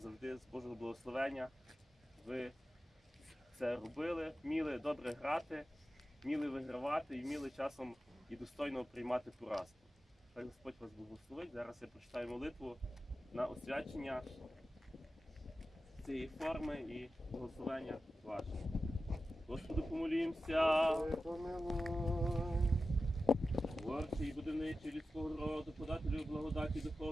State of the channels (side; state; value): both; normal; correlation 0.93